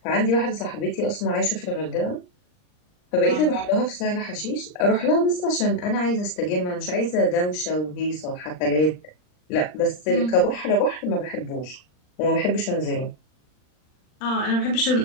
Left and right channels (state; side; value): late; right; 39 ms